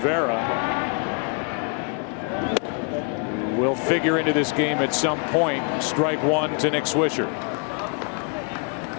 who will figure into this game at some point. Strike 1 to Nick Swisher.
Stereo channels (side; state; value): right; quieter; 37.9 dB